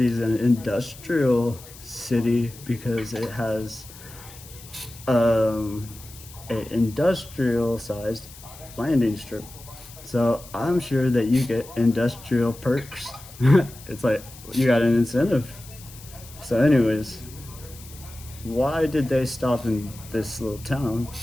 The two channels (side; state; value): left; noise; hiss, 19 dB below the sound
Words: an industrial city, because it has an industrial sized landing strip. So I'm sure that you get industrial perks. It's like you got an incentive. So, anyways, why did they stop in this little town?